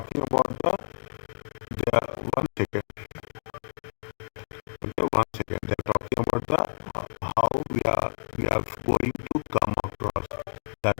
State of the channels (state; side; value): silent; right; digital silence